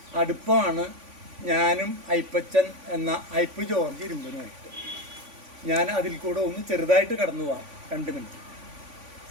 അടുപ്പമാണ് ഞാനും അയ്പ്പച്ചൻ എന്ന അയ്പ്പ് ജോർജ് ഇരുമ്പനുമായിട്ട്. ഞാൻ അതിൽ കൂടെ ഒന്ന് ചെറുതായിട്ട് കടന്നു പോവാം. 2 മിനിറ്റ്.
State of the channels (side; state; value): left; late; 3.5 ms